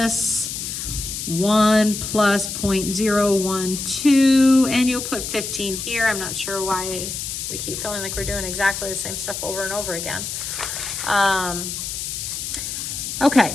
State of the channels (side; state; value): left; noise; hiss, 5 dB below the sound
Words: 1 plus 0.012, and you'll put 15 here. I'm not sure why we keep feeling like we're doing exactly the same stuff over and over again. Okay.